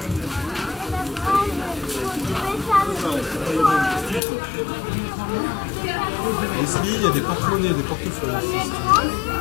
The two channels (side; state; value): right; drops out; at 4.2 s